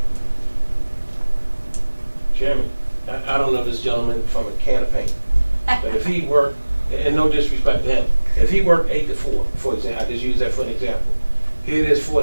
Chairman, I don't know this gentleman from a can of paint, but if he worked, and no disrespect to him, if he worked 8 to 4, for example, I just use that for an example. Here it is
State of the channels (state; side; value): inverted; both; correlation -1.00